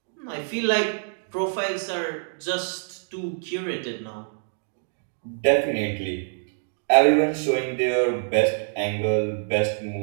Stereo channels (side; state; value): left; silent; digital silence